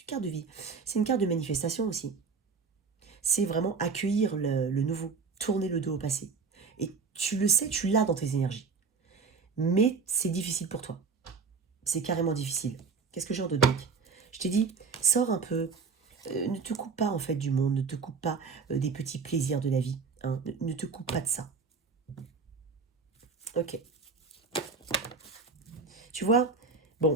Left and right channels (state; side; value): quieter; left; 5.0 dB